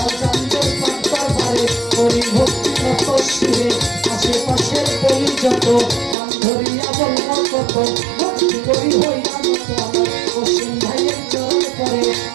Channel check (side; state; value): left; drops out; at 6.2 s